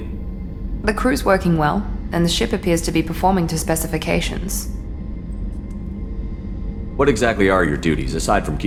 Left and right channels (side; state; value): both; identical; correlation 1.00